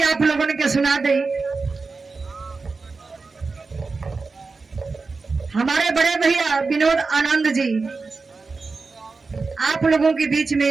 आप लोगों ने के सुना दे। हमारे बड़े भैया विनोद आनंद जी आप लोगों के बीच में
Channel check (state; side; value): quieter; left; 4.2 dB